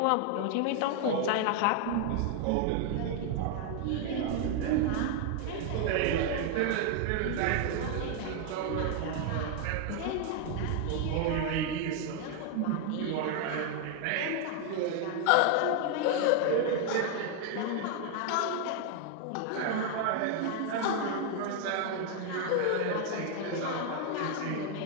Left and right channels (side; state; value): both; different; correlation 0.00